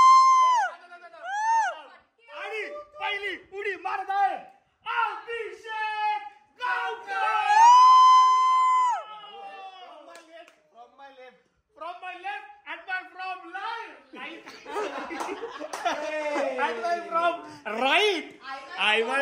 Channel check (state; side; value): identical; both; correlation 1.00